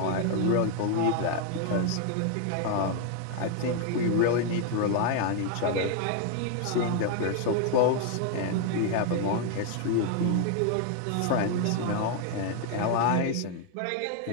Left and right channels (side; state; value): both; different; correlation 0.00